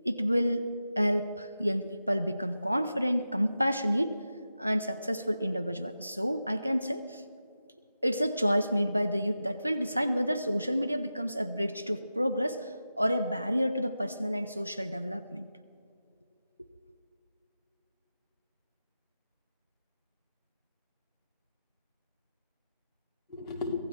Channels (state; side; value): inverted; both; correlation -0.91